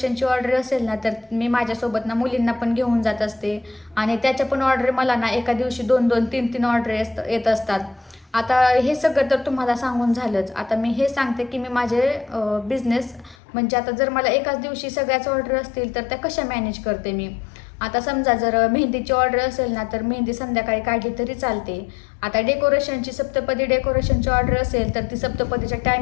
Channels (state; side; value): drops out; right; at 13.4 s